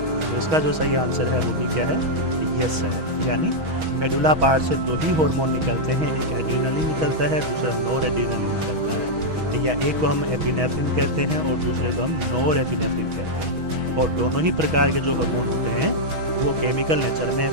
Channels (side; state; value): left; late; 6.3 ms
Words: तो इसका जो सही आंसर है वो भी क्या है? यस है। यानी मेडुला पार्ट से दो ही हार्मोन निकलते हैं, एक एड्रिनलिन निकलता है, दूसरा नोर एड्रिनलिन निकलता है। या एक को हम एपिनेफ्रिन कहते हैं और दूसरे को हम नोर एपिनेफ्रिन कहते हैं। और दोनों ही प्रकार के जो हार्मोन होते हैं वो केमिकल नेचर में